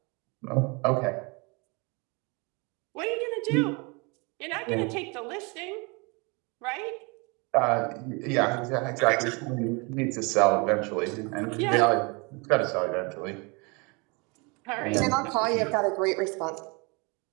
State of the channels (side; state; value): left; quieter; 29.8 dB